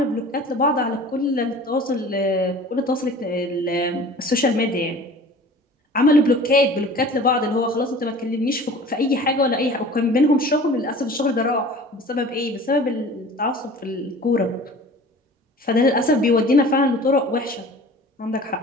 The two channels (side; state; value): both; normal; correlation 0.43